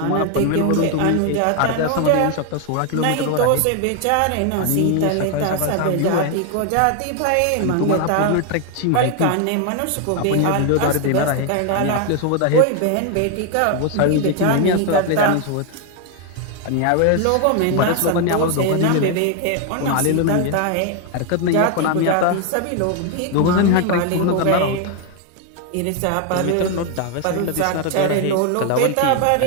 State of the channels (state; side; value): different; both; correlation 0.01